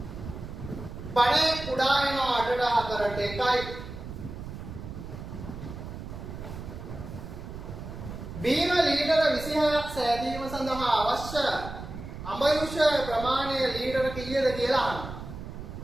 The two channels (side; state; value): right; noise; rumble, 10 dB below the sound